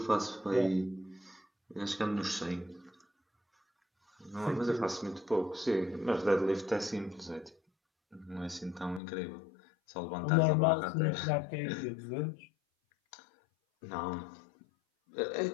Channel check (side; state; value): right; drops out; at 9.0 s